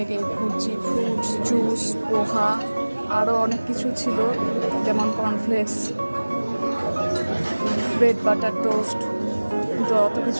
egg bhurji, fruits, juice, poha, আরও অনেক কিছু ছিল, যেমন কর্নফ্লেক্স, ব্রেড বাটার টোস্ট। কিন্তু অত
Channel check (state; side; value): inverted; both; correlation -1.00